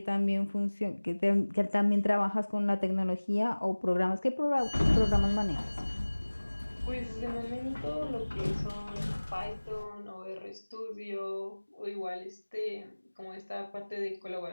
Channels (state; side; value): inverted; both; correlation -1.00